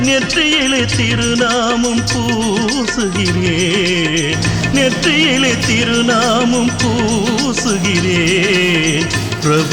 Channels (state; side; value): identical; both; correlation 1.00